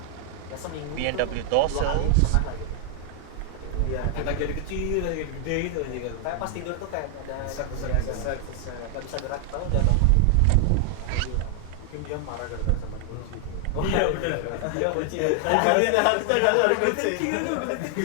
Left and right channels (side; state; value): both; different; correlation 0.00